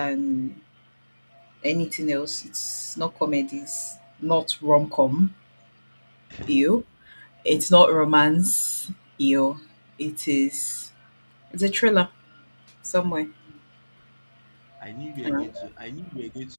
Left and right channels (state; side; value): inverted; both; correlation -1.00